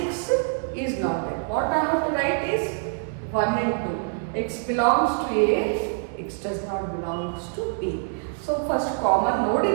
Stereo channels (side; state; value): left; silent; 62 dB below the other